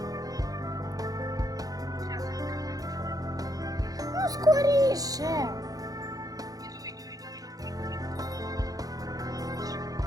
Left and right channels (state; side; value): late; left; 0.18 ms